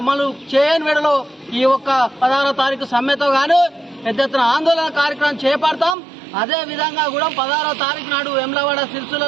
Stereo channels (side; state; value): left; drops out; at 6.0 s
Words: చేయని వేళలో ఈ 16వ తారీఖు సమ్మెతో గాను పెద్ద ఎత్తున ఆందోళన కార్యక్రమం చేపడతాం. అదే విధంగా కూడా 16వ తారీఖు నాడు వెమ్లవాడ